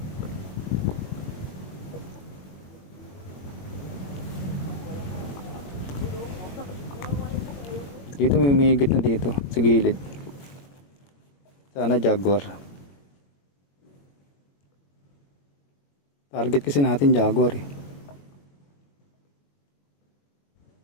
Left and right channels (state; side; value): late; right; 21 ms